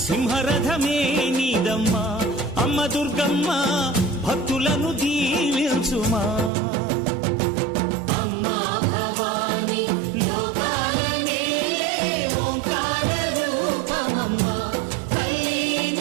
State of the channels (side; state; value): left; drops out; at 6.5 s